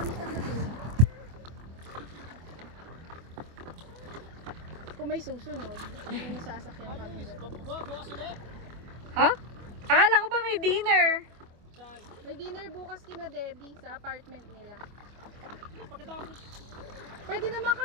sa gabi. Kung may susunod, may sasakyan kami. Ha? Akala ko ba may dinner? May dinner bukas kina Debbie sa apartment nila. Pwede naman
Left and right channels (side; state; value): left; late; 25 ms